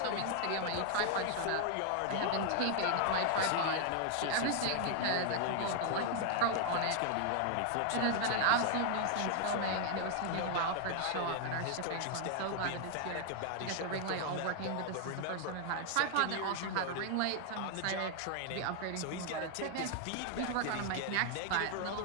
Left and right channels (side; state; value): both; different; correlation 0.00